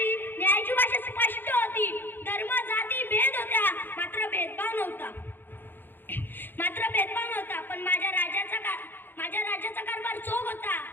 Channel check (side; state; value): right; late; 0.096 ms